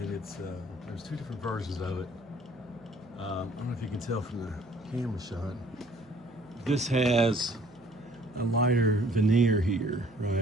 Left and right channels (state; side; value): noise; right; hum, 25 dB below the sound